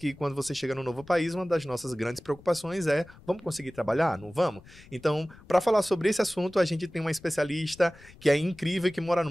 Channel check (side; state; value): left; noise; rumble, 22 dB below the sound